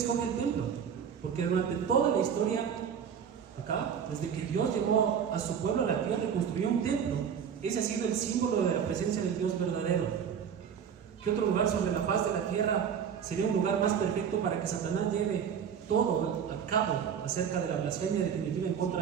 el templo? Porque durante toda la historia, acá, desde que Dios llevó a su pueblo a la tierra y construyó un templo, ese ha sido el símbolo de la presencia del Dios verdadero. ¿Qué otro lugar sobre la faz de la tierra sería un lugar más perfecto para que Satanás lleve todo a cabo acerca de la blasfemia definitiva en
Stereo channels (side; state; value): left; quieter; 7.7 dB